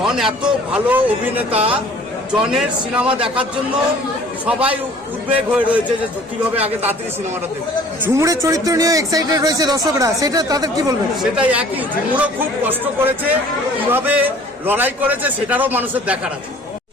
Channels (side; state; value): both; normal; correlation 0.51